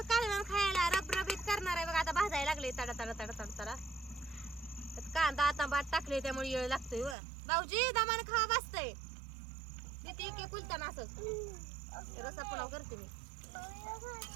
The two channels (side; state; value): left; drops out; at 7.2 s